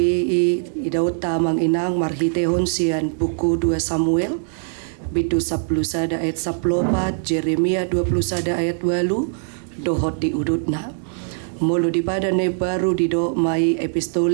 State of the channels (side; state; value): left; silent; 65 dB below the other